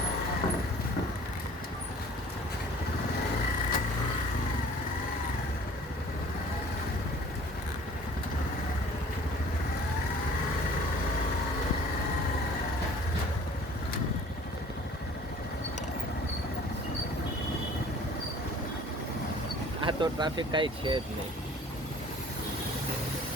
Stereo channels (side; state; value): both; normal; correlation 0.50